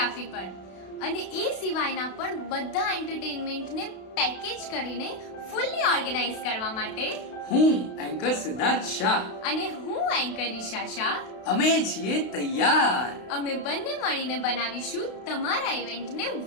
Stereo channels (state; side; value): late; right; 32 ms